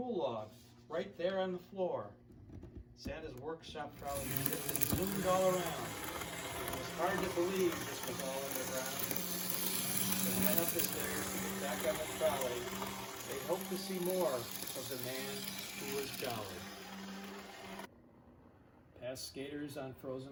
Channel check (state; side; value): identical; both; correlation 1.00